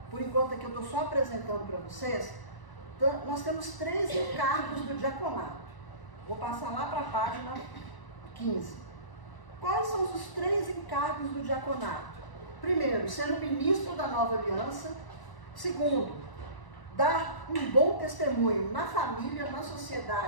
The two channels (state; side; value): late; right; 1.0 ms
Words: por enquanto aqui eu estou só apresentando para vocês, nós temos 3 encargos do diaconato. Vou passar lá para a página 15. Quais são os 3 encargos do diaconato? Primeiro, ser o ministro da nova aliança. Segundo, dar um bom testemunho na família, na